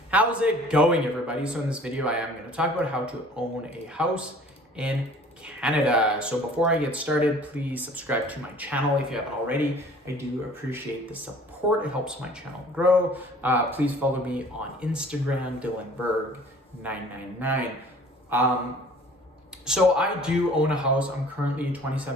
How's it going, everybody? So in this video, I am going to talk about how to own a house in Canada. So before I get started, please subscribe to my channel if you haven't already. I do appreciate the support. It helps my channel grow. Please follow me on Instagram, DylanBerg999. So I do own a house. I'm currently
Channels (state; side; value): normal; both; correlation 0.50